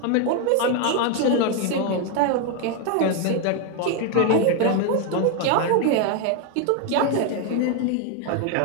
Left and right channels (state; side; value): different; both; correlation 0.01